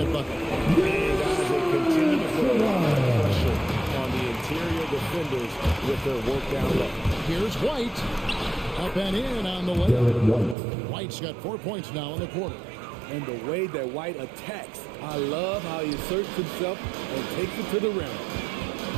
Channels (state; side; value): drops out; left; at 10.6 s